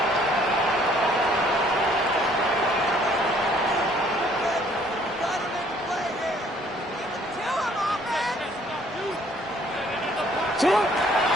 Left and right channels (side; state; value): both; normal; correlation 0.61